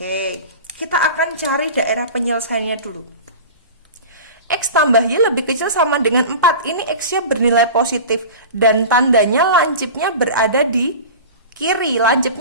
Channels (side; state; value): both; inverted; correlation -0.33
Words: Kita akan cari daerah penyelesaiannya dulu. X tambah Y lebih kecil sama dengan 4. Ini X-nya bernilai positif. Dan tandanya lancipnya berada di kiri.